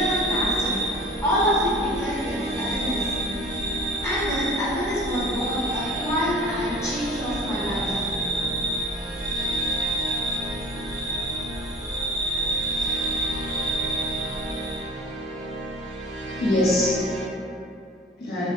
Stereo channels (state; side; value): normal; both; correlation 0.42